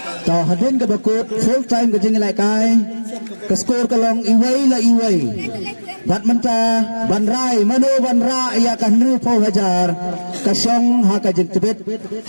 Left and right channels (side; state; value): both; inverted; correlation -1.00